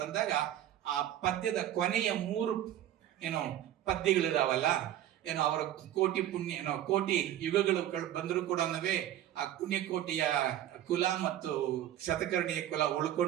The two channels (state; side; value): quieter; left; 12.2 dB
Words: ಆ ಪದ್ಯದ ಕೊನೆಯ 3 ಪದ್ಯಗಳಿದಾವಲ್ಲ, ಅವರ ಕೋಟಿ ಪುಣ್ಯ ಕೋಟಿ ಯುಗಗಳು ಬಂದರೂ ಕೂಡ ಆ ಪುಣ್ಯಕೋಟಿಯ ಕುಲ ಮತ್ತು ಶತಕರ್ಣಿಯ ಕುಲ